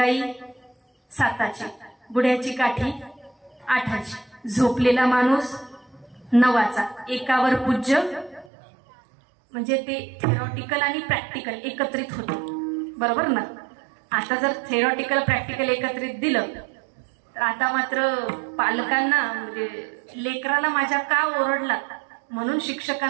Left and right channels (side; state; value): left; drops out; at 8.5 s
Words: 7ची, बुड्याची काठी 8ची, झोपलेला माणूस 9चा, एकावर पूज्य. म्हणजे ते थेरॉटिकल आणि प्रॅक्टिकल एकत्रित होतं, बरोबर ना. आता जर थेरॉटिकल प्रॅक्टिकल एकत्रित दिलं तर आता मात्र पालकांना म्हणजे लेकराला माझ्या का ओरडला म्हणून